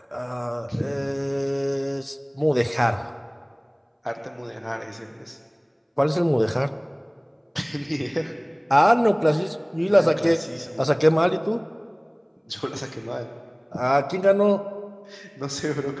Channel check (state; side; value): identical; both; correlation 1.00